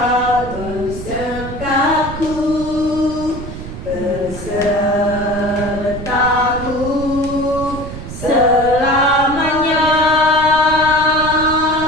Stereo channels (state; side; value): noise; right; rumble, 10 dB below the sound